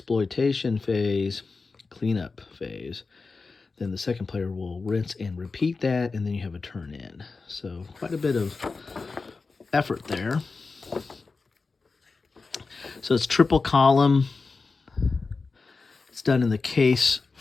phase, cleanup phase. Then the second player will rinse and repeat that, and then you have a turn in. So quite a bit of effort there. So it's triple column. It's done in the case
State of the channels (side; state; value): right; quieter; 4.2 dB